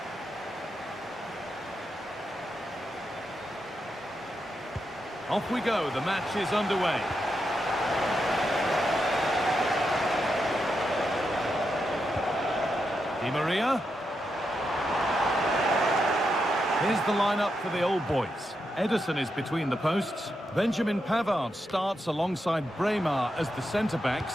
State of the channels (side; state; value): both; normal; correlation 0.85